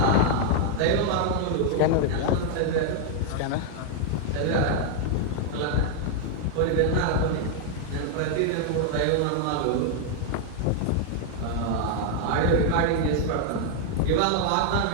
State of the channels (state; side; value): different; both; correlation 0.00